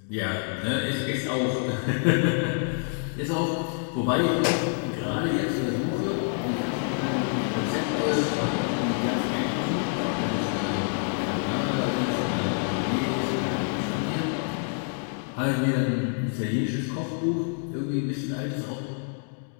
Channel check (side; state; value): right; silent; 56 dB below the other